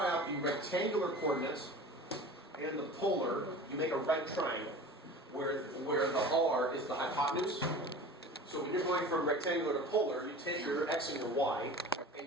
out the rectangular coordinates and the polar, you make a right triangle, where the r is the hypotenuse. So when you're going from rectangular to polar, you take your x and your y,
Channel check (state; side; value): normal; both; correlation 0.38